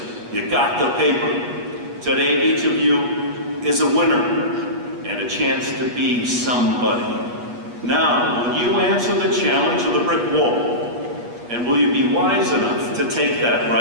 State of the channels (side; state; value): left; late; 8.3 ms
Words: You got the paper. Today, each of you is a winner and a chance to be somebody. Now, will you answer the challenge of the brick wall? And will you be wise enough to take that